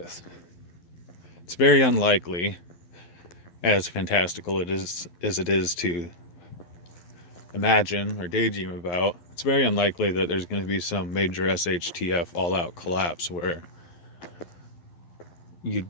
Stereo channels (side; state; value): right; late; 11 ms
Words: It's very unlikely, as fantastical as it is to imagine or daydream about, it's very unlikely that there's going to be some major SHTF all-out collapse where you